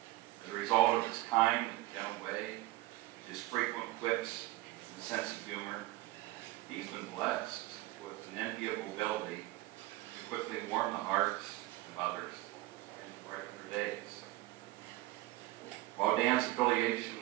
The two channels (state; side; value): quieter; left; 18.1 dB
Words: As a result of his kind and gentle way, his frequent quips, and sense of humor, he's been blessed with an enviable ability to quickly warm the hearts of others and to brighten their days. While Dan's